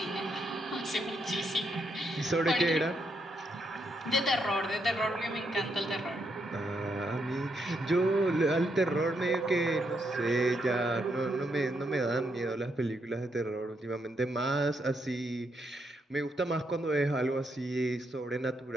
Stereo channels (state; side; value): normal; both; correlation 0.78